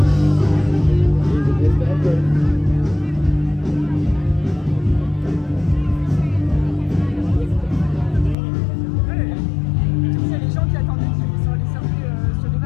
Here's a bit bad dream. Il y a les gens qui attendaient qu'ils sont allés surfer sur les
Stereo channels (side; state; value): right; drops out; at 8.3 s